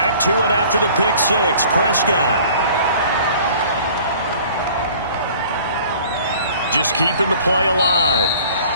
to it after the pick six. Prescott. Just keeping the play alive.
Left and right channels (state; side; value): inverted; both; correlation -0.50